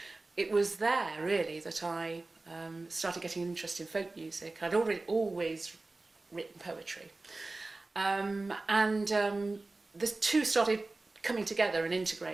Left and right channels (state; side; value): quieter; left; 3.2 dB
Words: it was there really that I started getting an interest in folk music. I'd always written poetry. The two started coming together and